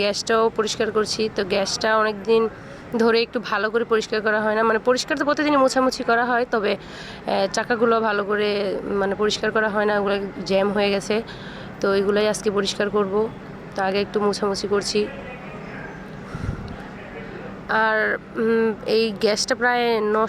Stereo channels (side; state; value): both; identical; correlation 1.00